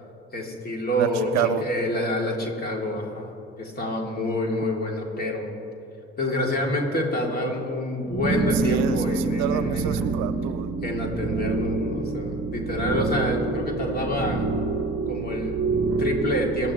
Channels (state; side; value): normal; both; correlation 0.37